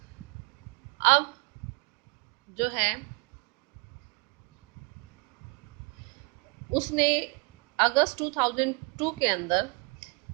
अब जो है उसने अगस्त 2002 के अंदर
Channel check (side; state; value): left; quieter; 29.8 dB